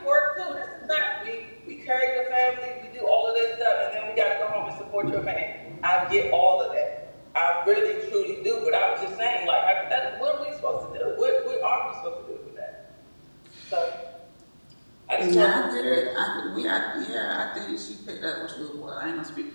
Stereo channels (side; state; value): both; inverted; correlation -1.00